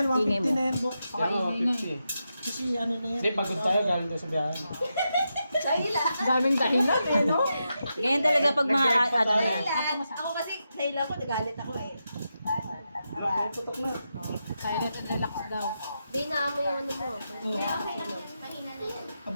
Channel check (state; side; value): inverted; both; correlation -0.87